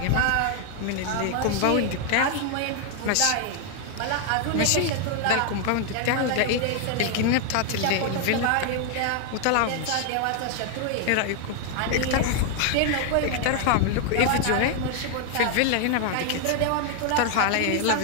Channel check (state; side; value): different; both; correlation 0.00